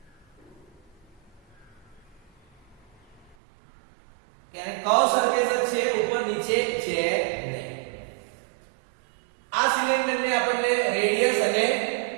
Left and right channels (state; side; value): drops out; left; at 3.4 s